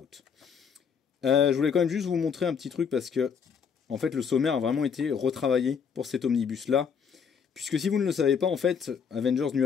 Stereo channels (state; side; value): quieter; right; 6.7 dB